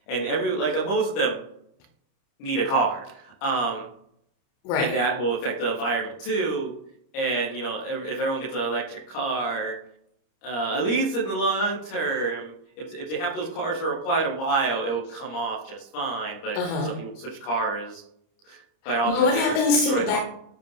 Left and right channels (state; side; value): late; right; 30 ms